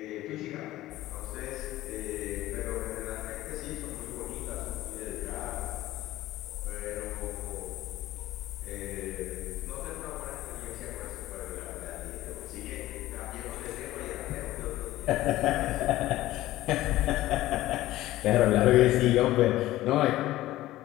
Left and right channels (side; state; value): right; quieter; 15.8 dB